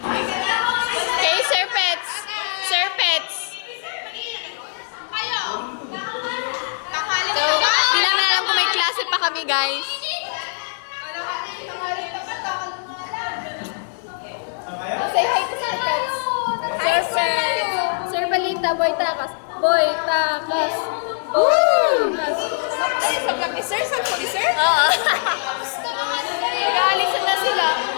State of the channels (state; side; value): silent; right; 63 dB below the other